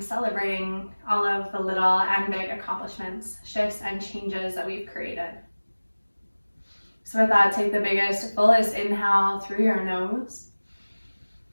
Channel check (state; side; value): inverted; both; correlation -1.00